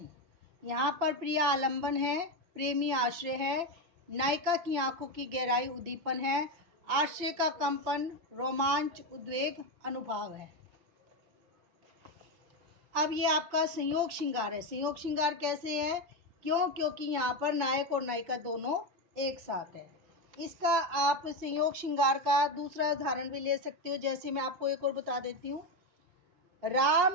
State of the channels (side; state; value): left; late; 5.5 ms